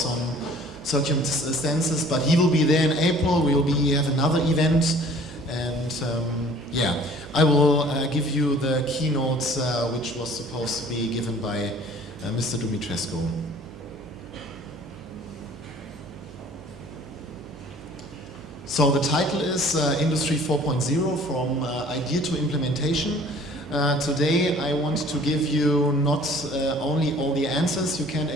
circumstances, but he will be there in April. We will have another event, and I will give you the keynotes which was supposed to be given by Mr. Dumitrescu. So the title is Industry 4.0, from idea to implementation. Today I want to give you not only all the answers, you can't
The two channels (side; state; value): right; noise; hum, 18 dB below the sound